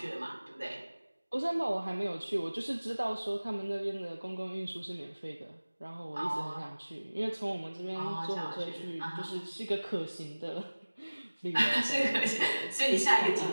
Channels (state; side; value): inverted; both; correlation -1.00